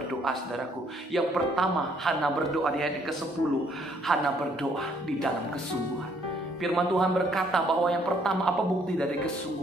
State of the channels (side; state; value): both; normal; correlation 0.66